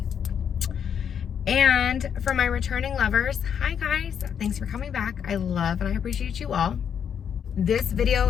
And for my returning lovers, hi guys, thanks for coming back. I love and I appreciate you all. This video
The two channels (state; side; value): quieter; right; 8.0 dB